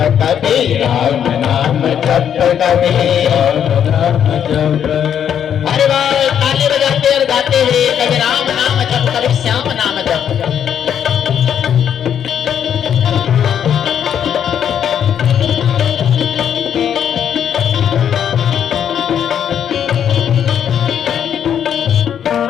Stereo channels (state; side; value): quieter; right; 8.9 dB